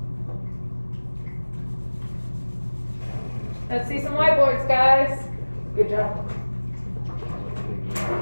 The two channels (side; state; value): both; inverted; correlation -1.00